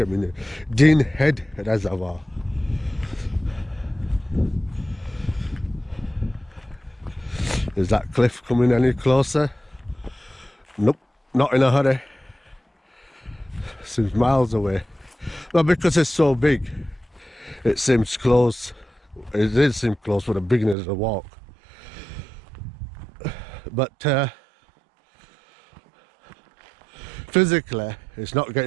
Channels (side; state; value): left; drops out; at 20.8 s